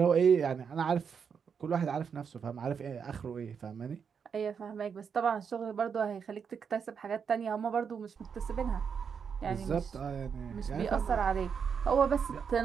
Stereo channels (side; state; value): left; quieter; 6.6 dB